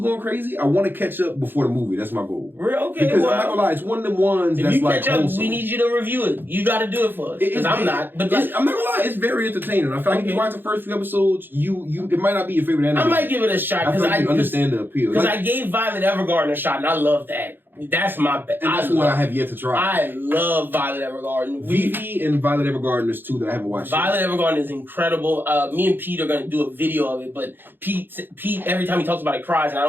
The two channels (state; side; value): late; left; 0.098 ms